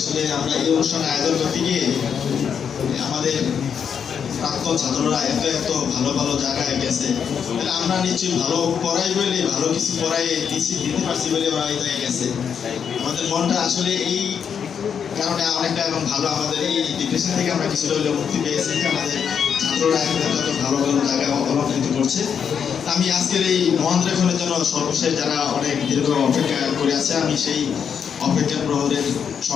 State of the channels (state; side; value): quieter; right; 7.3 dB